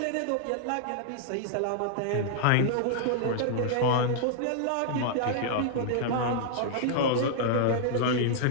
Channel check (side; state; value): both; different; correlation -0.01